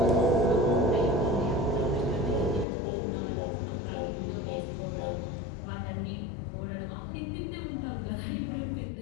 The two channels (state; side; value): drops out; right; at 2.7 s